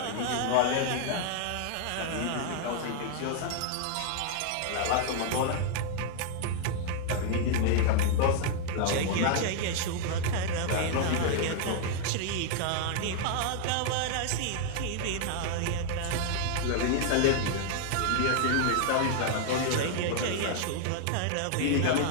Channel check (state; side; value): different; both; correlation 0.00